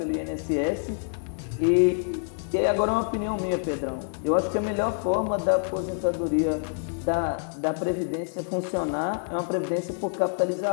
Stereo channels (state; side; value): silent; right; digital silence